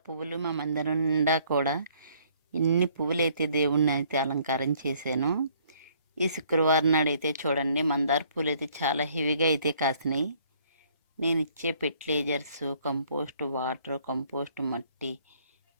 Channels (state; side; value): inverted; both; correlation -0.62